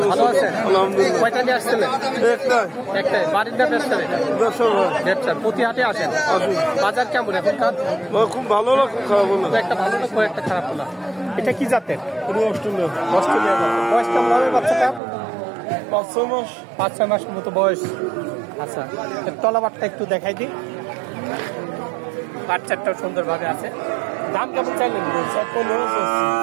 ভালো আছেন? আলহামদুলিল্লাহ। কয়টা নিয়ে আসছিলেন? একটাই। বাড়ির না ব্যবসা? ব্যবসা। প্রতি হাটে আসেন? বাজার কেমন এখনকার? খুব ভালো না, খুব খারাপ না। একটা ভালো না, একটা খারাপ না। এটা কি জাতের? অস্ট্রেলিয়া অস্ট্রেলিয়া জাতের। বয়স কেমন হবে বাচ্চাটা? 5-6 মাস। 5-6 মাসের মতো বয়স। আচ্ছা, এর তলাবারটা একটু দেখাই দিই। বাচ্চাটাও সুন্দরভাবে আছে। দাম কেমন চাইলেন?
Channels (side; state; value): left; drops out; at 15.0 s